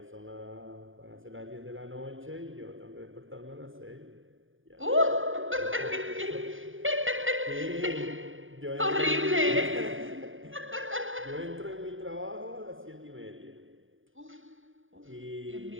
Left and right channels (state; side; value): late; left; 0.58 ms